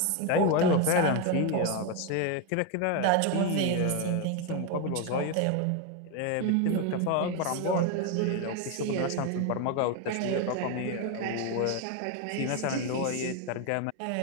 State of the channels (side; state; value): both; different; correlation 0.02